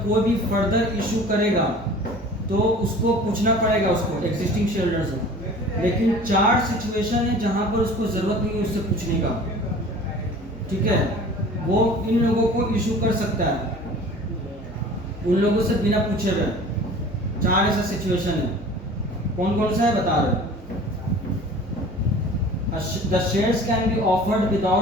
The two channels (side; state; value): both; normal; correlation 0.44